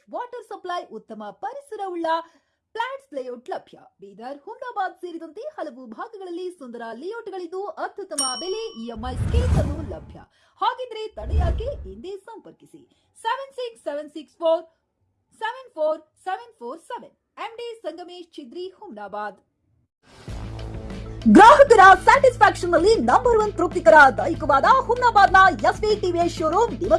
water supply, ಉತ್ತಮ ಪರಿಸರವುಳ್ಳ ಫ್ಲಾಟ್ಸ್ ಲೇಔಟ್ ಲಭ್ಯ. ಬೀದರ್, ಹುಮ್ನಾಬಾದ್ ಸೇರಿದಂತೆ ಹಲವು ಭಾಗಗಳಲ್ಲಿ ಸುಂದರ ಲೇಔಟ್ಗಳಿದ್ದು ಅತ್ಯುತ್ತಮ ಬೆಲೆ, ಇಎಂಐ ಸ್ಕೀಮ್ಸ್ ಅನ್ನು ಲಭ್ಯ. ಹಾಗಿದ್ರೆ ತಡೆಯಾಕೆ ಹಿಂದೆ ಸಂಪರ್ಕಿಸಿ 7676474747 MD ಸಂಗಮೇಶ್ ಚಿದ್ರಿ, ಹುಮ್ನಾಬಾದ್. ಗ್ರಾಹಕರ ಸ್ಯಾಟಿಸ್ಫ್ಯಾಕ್ಷನ್ ನಲ್ಲಿ ನಂಬರ್ 1 ತೃಪ್ತಿಕರ ದೈಹಿಕವಾದ ಹುಮ್ನಾಬಾದ್ನ ಎಸ್ವಿ ಟಿವಿಎಸ್ ಶೋರೂಮ್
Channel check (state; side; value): identical; both; correlation 1.00